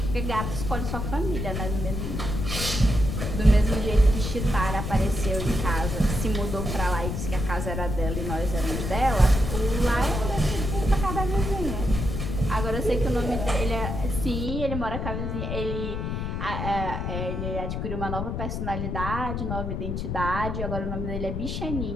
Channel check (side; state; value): left; noise; rumble, 3 dB below the sound